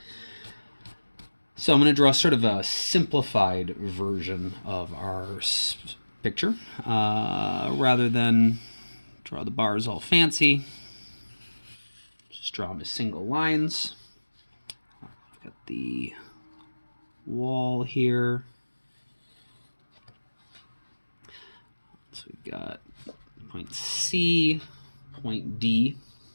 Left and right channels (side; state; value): both; inverted; correlation -1.00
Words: So I'm going to draw sort of a simplified version of our picture rather than draw the bars all fancy. Just draw them as single lines. Got the wall here. So we've got point C, point D,